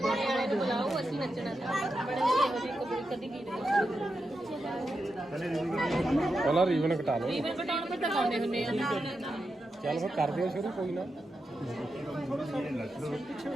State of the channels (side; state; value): both; normal; correlation 0.88